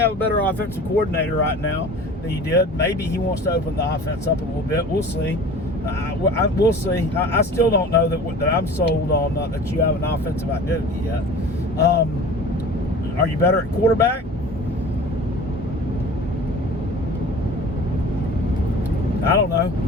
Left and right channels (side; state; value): both; normal; correlation 0.41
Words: a better offensive coordinator right now than you did. Maybe he wants to open the offense up a little bit. We'll see. We'll see. I still don't know that I'm sold on that you have an offensive identity yet. Are you better at quarterback? I don't know.